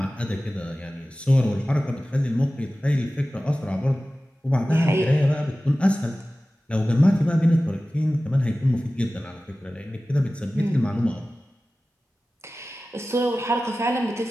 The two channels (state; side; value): normal; both; correlation 0.96